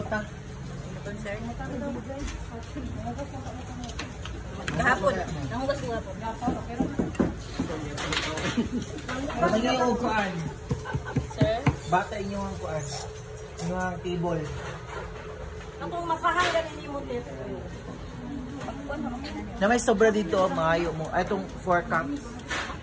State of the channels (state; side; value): identical; both; correlation 1.00